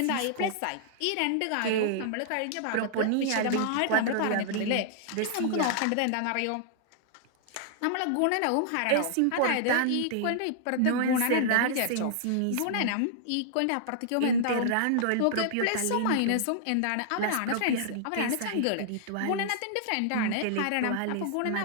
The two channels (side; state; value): both; different; correlation -0.01